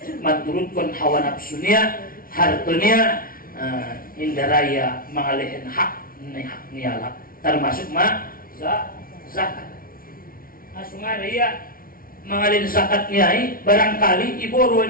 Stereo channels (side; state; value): right; late; 0.42 ms